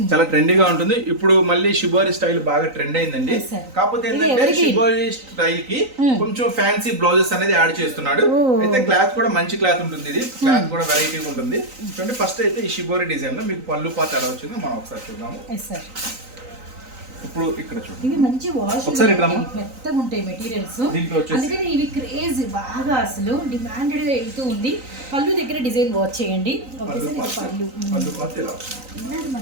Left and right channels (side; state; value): left; late; 3.9 ms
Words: చాలా ట్రెండీగా ఉంటుంది. ఇప్పుడు మళ్ళీ షిబోరి స్టైల్ బాగా ట్రెండ్ అయిందండి. కాకపోతే ఏంటంటే షిబోరి స్టైల్ కి కొంచెం ఫ్యాన్సీ బ్లౌజెస్ అనేది యాడ్ చేస్తున్నాడు. అయితే క్లాత్ కూడా మంచి క్లాత్ ఉంటుంది, ఇది క్లాత్ కూడా వెరైటీ ఉంటుంది. చూడండి ఫస్ట్ అయితే ఈ షిబోరి డిజైన్ లో మీకు పళ్ళు పార్ట్ ఎలా వచ్చిందో మనం ఒకసారి చూద్దాము. ఇప్పుడు ఇక్కడ చూడండి, ఇవి మంచి వాష్ మెత్తగా ఉంటాయి మెటీరియల్స్, అందుకని ఇవి క్రేజ్ బాగా అసలు డిమాండెడ్ గా వెళ్తూ ఉంది. పళ్ళు దగ్గర డిజైన్ వాచ్ చేయండి. పళ్ళు పార్ట్ ఇలా